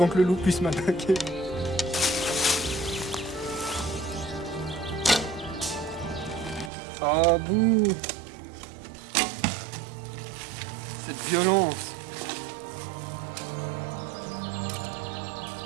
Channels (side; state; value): left; drops out; at 6.7 s